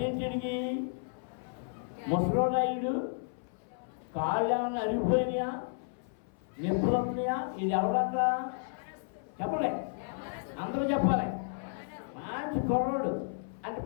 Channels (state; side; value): silent; right; 56 dB below the other